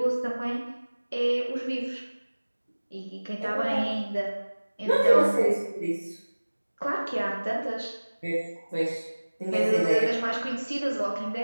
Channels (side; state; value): both; inverted; correlation -1.00